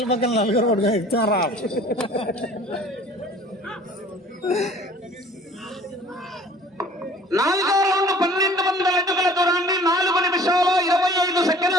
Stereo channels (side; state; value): both; normal; correlation 0.50